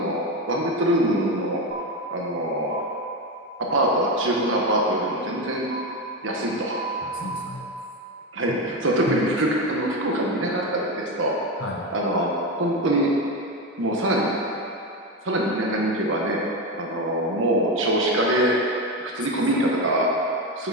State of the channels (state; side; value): normal; both; correlation 0.15